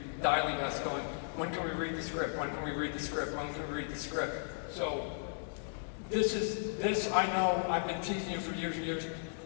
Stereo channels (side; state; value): right; silent; digital silence